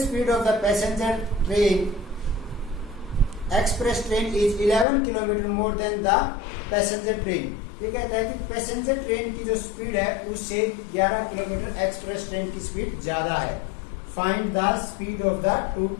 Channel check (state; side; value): drops out; right; at 4.9 s